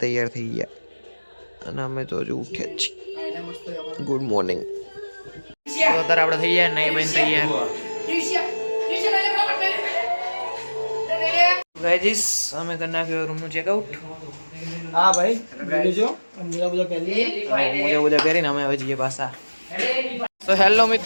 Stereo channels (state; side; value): inverted; both; correlation -1.00